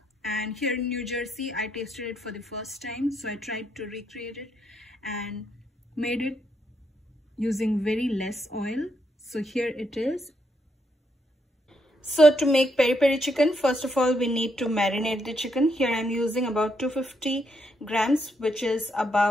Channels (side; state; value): both; normal; correlation 0.77